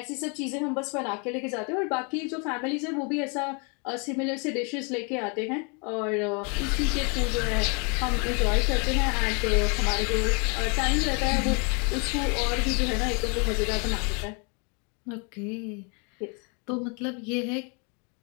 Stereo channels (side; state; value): right; quieter; 35.0 dB